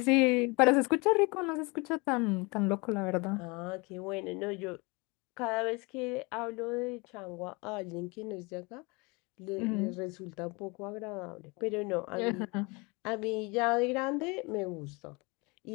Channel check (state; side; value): quieter; right; 27.6 dB